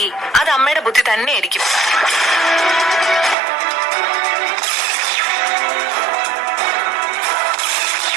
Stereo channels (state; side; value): drops out; left; at 3.4 s